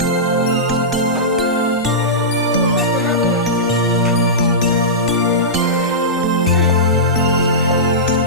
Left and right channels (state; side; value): normal; both; correlation -0.15